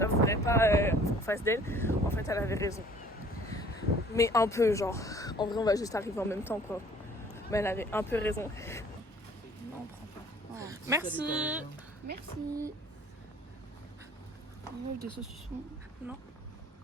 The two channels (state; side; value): normal; both; correlation 0.53